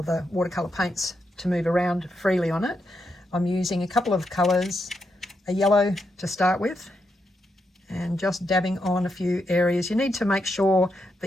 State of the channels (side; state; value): both; normal; correlation 0.83